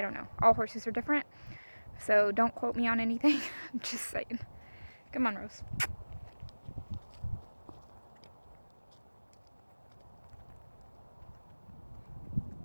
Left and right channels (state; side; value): inverted; both; correlation -1.00